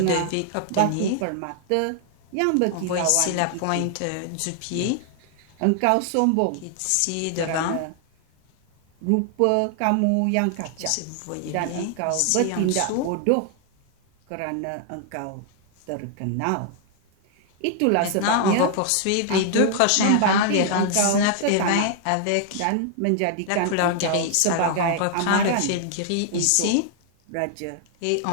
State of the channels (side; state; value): both; different; correlation 0.00